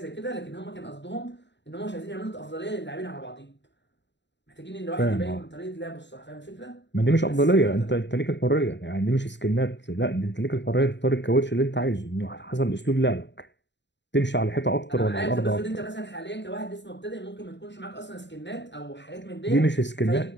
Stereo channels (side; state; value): right; late; 0.52 ms